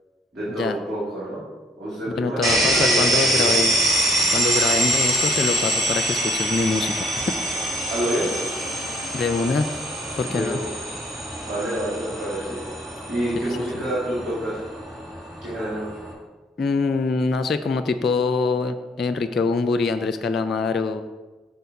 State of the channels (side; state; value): both; normal; correlation 0.62